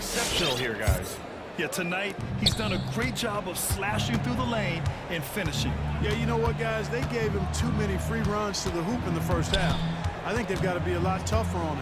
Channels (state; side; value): identical; both; correlation 1.00